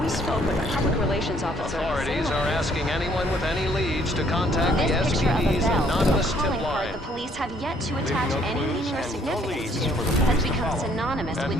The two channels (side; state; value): both; normal; correlation 0.64